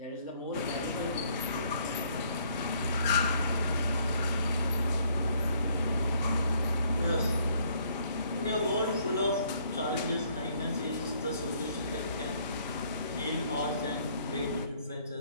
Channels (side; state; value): both; inverted; correlation -0.64